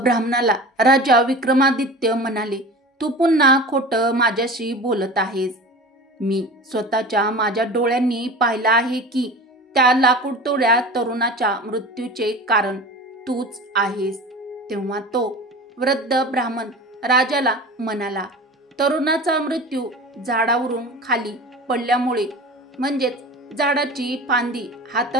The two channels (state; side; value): normal; both; correlation 0.35